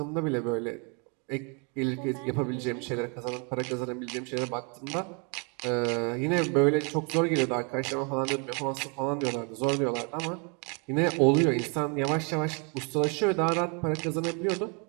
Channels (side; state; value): left; quieter; 35.3 dB